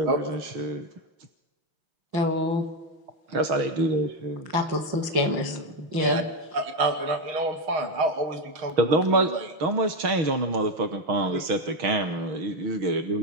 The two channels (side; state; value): left; late; 6.3 ms